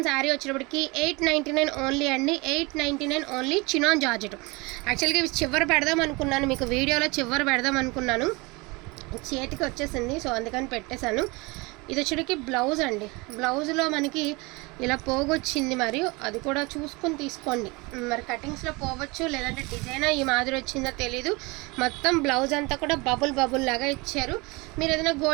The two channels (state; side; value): quieter; left; 25.6 dB